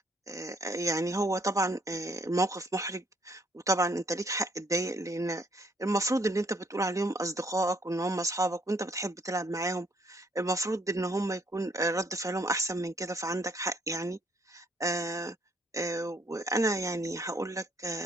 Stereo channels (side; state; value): both; normal; correlation 0.66